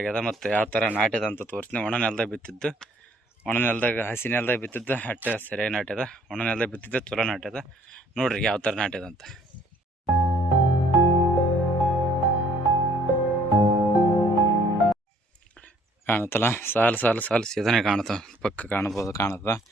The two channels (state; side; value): normal; both; correlation 0.60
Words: ಮತ್ತು ಯಾವ ಥರ ನಾಟ್ಯದ ಅಂತ ತೋರಿಸ್ತೀನಿ. ಒಣ ನೆಲದಾಗ ಬಿತ್ತಿದ್ದು, ಒಣ ನೆಲದಾಗ ಹಸಿ ನೆಲದಾಗ ಬಿತ್ತಿದ್ದು ಅಟ್ಟೆ ಸರಿಯಾಗಿ ನಾಟ್ಯದ, ಒಣ ನೆಲದಾಗ ಬಿತ್ತಿದ್ದು ಚಲೋ ನಾಟ್ಯದ. ನೋಡ್ರಿ ಯಾವ ಥರ ನಾಟ್ಯದ ಅಂತ. ಕಾಣುತ್ತಲ್ಲ, ಸಾಲು ಸಾಲು ಸಾಲು ಸೀದನೆ ಕಾಣುತ್ತ, ಪಕ್ಕ ಕಾಣುತ್ತ